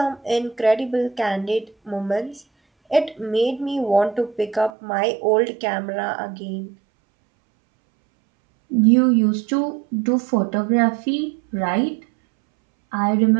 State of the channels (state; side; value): drops out; left; at 4.7 s